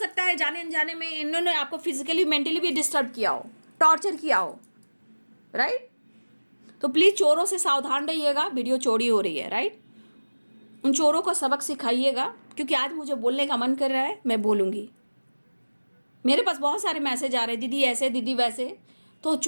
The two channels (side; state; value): both; inverted; correlation -1.00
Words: है जाने अनजाने में इन्होंने आपको फिजिकली मेंटली भी डिस्टर्ब किया हो, टॉर्चर किया हो, राइट। तो प्लीज चोरों से सावधान रहिएगा, वीडियो चोरी हो रही है, राइट। उन चोरों को सबक सिखाइएगा, क्योंकि आज मुझे बोलने का मन कर रहा है, मैं बोलूंगी। मेरे पास बहुत सारे मैसेज आ रहे हैं, दीदी ऐसे दीदी वैसे, तो